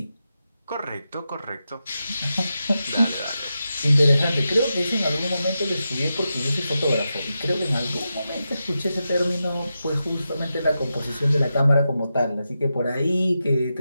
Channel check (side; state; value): both; inverted; correlation -0.89